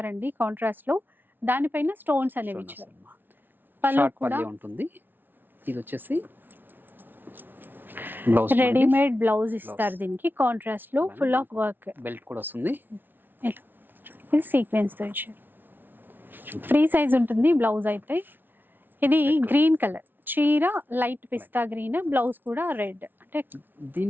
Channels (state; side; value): late; left; 0.095 ms